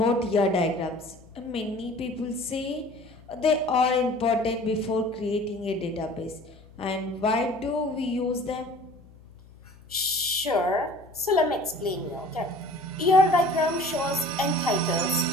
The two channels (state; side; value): noise; left; hum, 24 dB below the sound